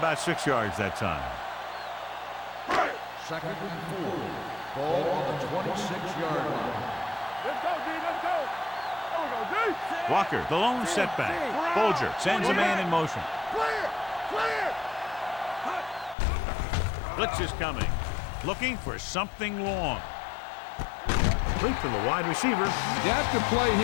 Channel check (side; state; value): right; drops out; at 16.2 s